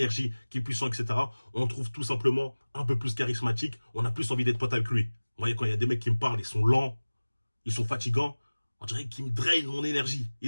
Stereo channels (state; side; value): inverted; both; correlation -1.00